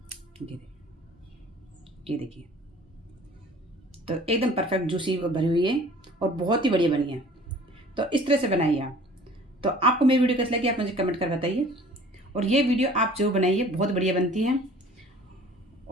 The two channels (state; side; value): normal; both; correlation 0.49